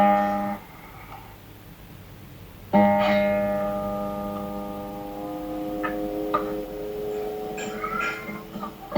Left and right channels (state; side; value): identical; both; correlation 1.00